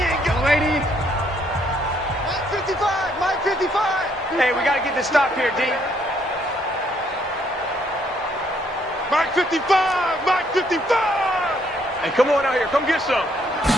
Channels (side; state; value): both; normal; correlation 0.69